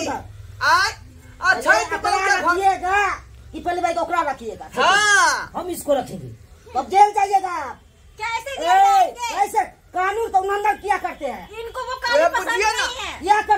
आय अच्छा रखिएगा कि पहले भाई को ओकरा रखिएगा। हाँ हम इसको रखेंगे, तब जेल जाइएगा। कैसे जेल जाएंगे? ऐसे कानून को उल्लंघन किया करते हैं। इनको वो काली पसंद बुझिए ना। नहीं है। क्या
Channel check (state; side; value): identical; both; correlation 1.00